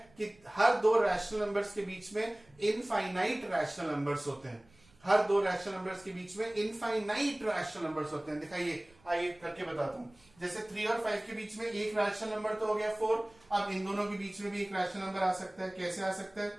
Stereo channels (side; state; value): right; noise; rumble, 29 dB below the sound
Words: कि हर दो रैशनल नंबर्स के बीच में इनफाइनाइट रैशनल नंबर्स होते हैं। हर दो रैशनल नंबर्स के बीच में इनफाइनाइट रैशनल नंबर्स होते हैं। दिखाइए, आइए करके बताता हूं। जैसे 3 और 5 के बीच में एक रैशनल नंबर तो हो गया 4, अब इन दोनों के बीच में भी एक रैशनल नंबर आ सकता है। कैसे आ सकता है,